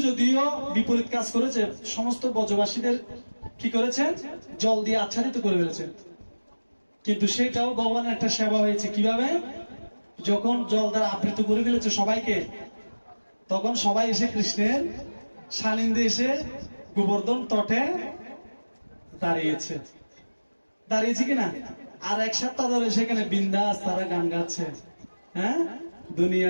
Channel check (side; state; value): both; inverted; correlation -1.00